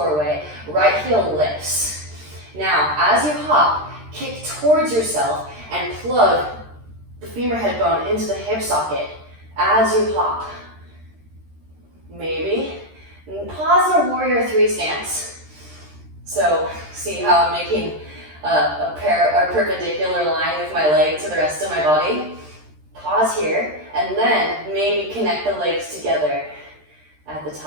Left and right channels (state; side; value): late; left; 13 ms